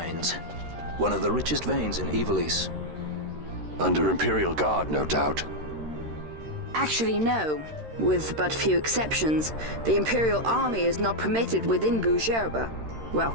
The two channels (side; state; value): left; late; 13 ms